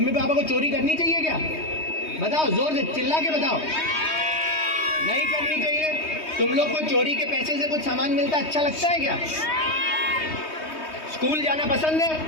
पापा को चोरी करनी चाहिए क्या? बताओ, जोर से चिल्ला के बताओ। नहीं करनी चाहिए। तुम लोग को चोरी के पैसे से कुछ सामान मिलता अच्छा लगता है क्या? स्कूल जाना पसंद है?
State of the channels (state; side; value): late; right; 3.2 ms